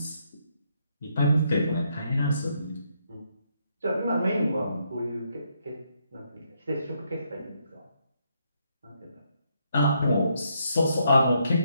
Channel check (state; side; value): inverted; both; correlation -0.75